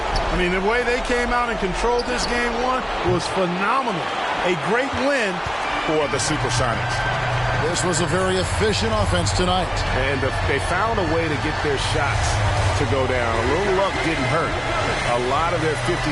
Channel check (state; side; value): identical; both; correlation 1.00